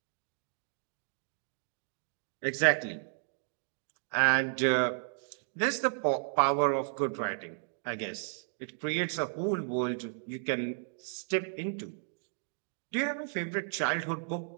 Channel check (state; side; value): silent; left; digital silence